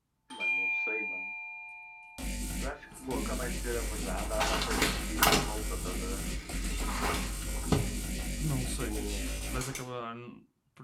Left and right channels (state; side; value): identical; both; correlation 1.00